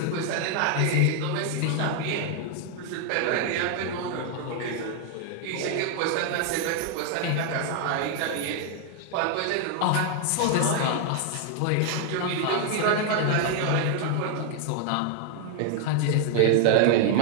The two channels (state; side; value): different; both; correlation 0.00